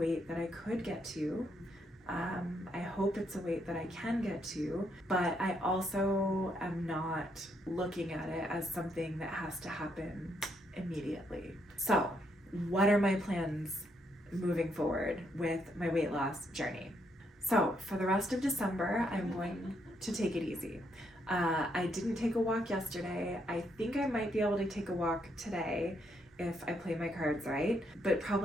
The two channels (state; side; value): normal; both; correlation 0.76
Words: that I could get to. I hope it's a weight that I can get to, but I also am not looking at it as something that has to happen immediately. So, what are my plans moving forward with my weight loss journey? So, for the rest of December, I'm going to take it easy. I didn't take a walk yesterday. I think I might be able to take a walk today if I play my cards right, but